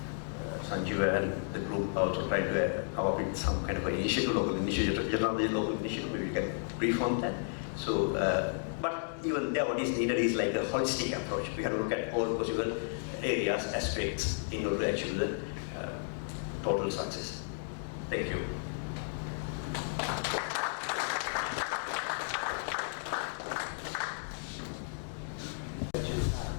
Sanjeev and the group also try to come up with some kind of an initiative, local initiative, generally local initiative, maybe we can brief on that. So, but even there what is needed is like a holistic approach. We have to look at all possible areas, aspects in order to achieve the total success. Thank you.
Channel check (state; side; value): silent; right; digital silence